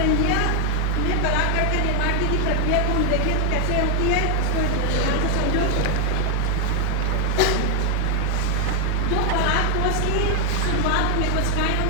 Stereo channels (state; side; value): different; both; correlation 0.00